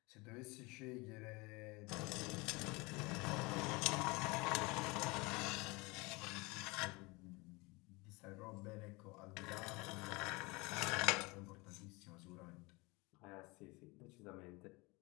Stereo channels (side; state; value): right; quieter; 25.5 dB